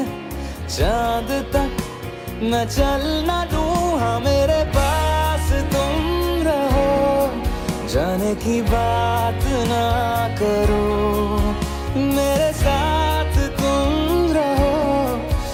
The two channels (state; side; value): identical; both; correlation 1.00